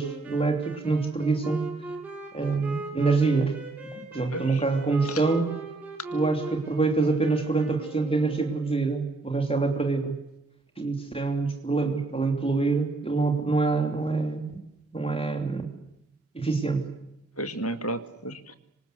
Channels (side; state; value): left; quieter; 3.4 dB